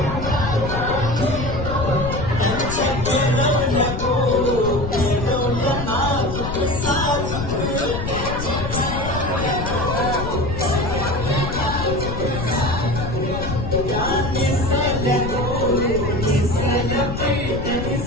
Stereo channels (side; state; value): left; noise; rumble, 5 dB below the sound